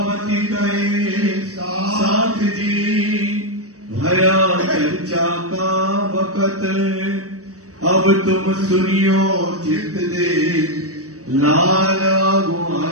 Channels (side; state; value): left; late; 0.66 ms